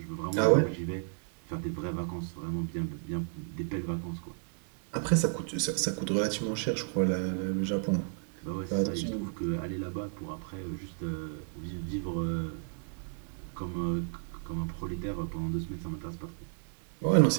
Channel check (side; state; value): left; silent; digital silence